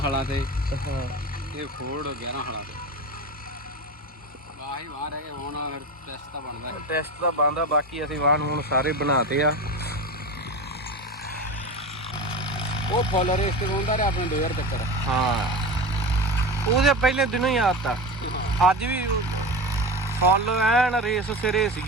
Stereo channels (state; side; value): normal; both; correlation 0.26